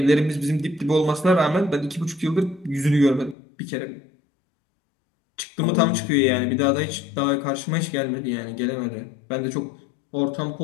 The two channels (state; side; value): drops out; right; at 3.4 s